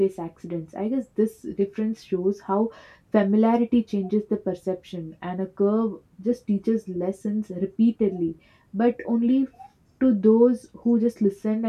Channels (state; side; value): identical; both; correlation 1.00